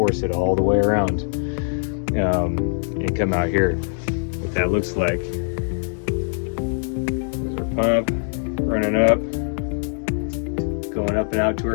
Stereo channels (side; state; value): right; silent; 64 dB below the other